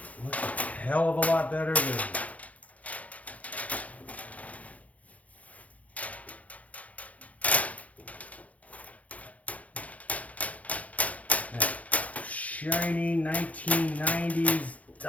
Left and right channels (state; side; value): late; right; 0.069 ms